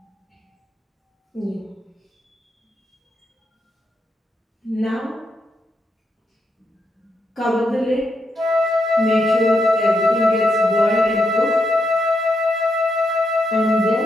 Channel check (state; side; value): normal; both; correlation 0.81